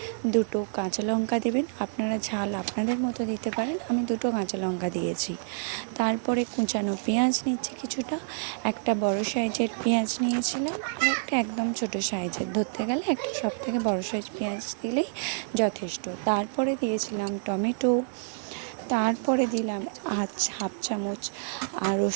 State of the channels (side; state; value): left; silent; digital silence